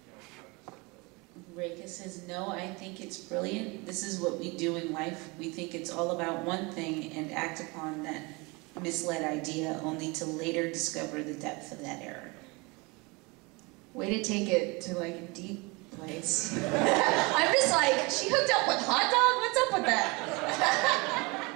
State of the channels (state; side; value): quieter; left; 26.8 dB